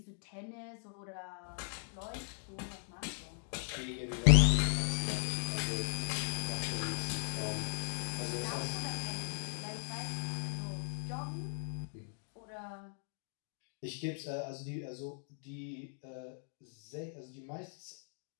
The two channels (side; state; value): right; silent; 52 dB below the other